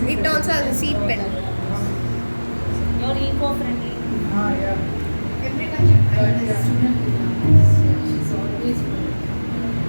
It also has a seed pen. You're eco-friendly. yeah. Everyone should try this. She's always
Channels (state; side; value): inverted; both; correlation -1.00